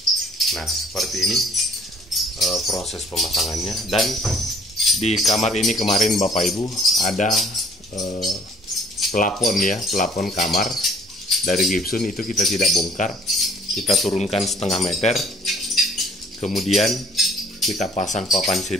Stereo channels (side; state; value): both; normal; correlation 0.56